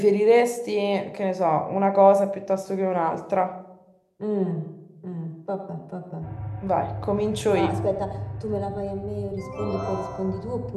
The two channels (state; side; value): identical; both; correlation 1.00